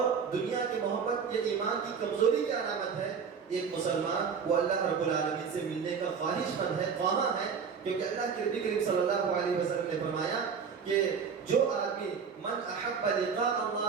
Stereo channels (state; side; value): quieter; left; 6.3 dB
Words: دنیا کی محبت یہ ایمان کی کمزوری کی علامت ہے. ایک مسلمان وہ اللہ رب العالمین سے ملنے کا خواہش مند ہے، خواہاں ہے، کیونکہ اللہ کے نبی کریم صلی اللہ علیہ وسلم نے فرمایا کہ جو آدمی من احب لقاء